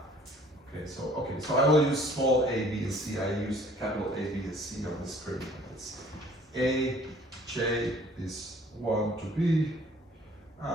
Okay, so I will use small a, b, and c. I use capital A, B, and C on the screen. It's A, J is 1 to B,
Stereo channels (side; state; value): both; normal; correlation 0.55